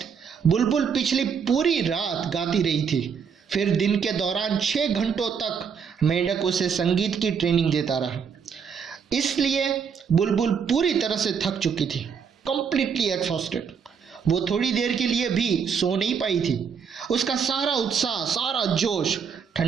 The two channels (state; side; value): quieter; left; 6.6 dB